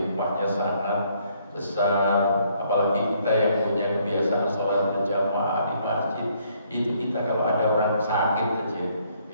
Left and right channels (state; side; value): inverted; both; correlation -0.67